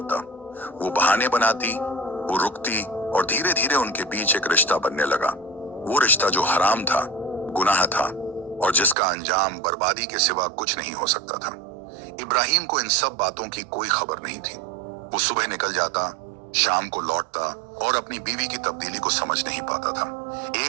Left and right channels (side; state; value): left; drops out; at 9.0 s